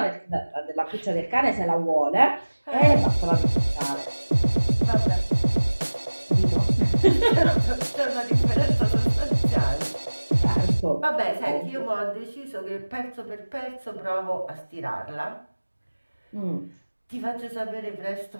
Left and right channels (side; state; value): both; inverted; correlation -1.00